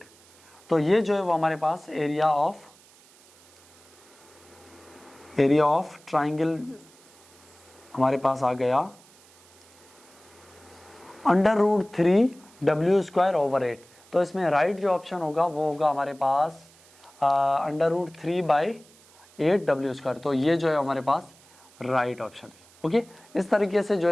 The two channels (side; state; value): right; noise; hiss, 26 dB below the sound